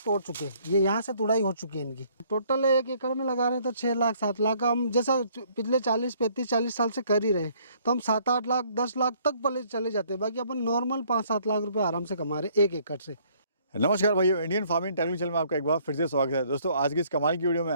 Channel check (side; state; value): both; inverted; correlation -0.63